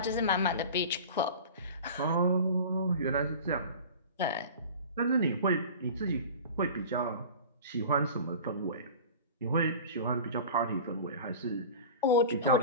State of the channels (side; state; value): both; inverted; correlation -0.37